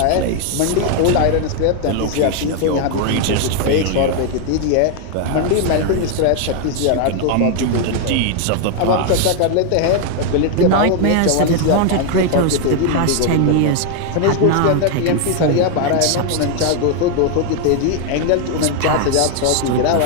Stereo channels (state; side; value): different; both; correlation 0.00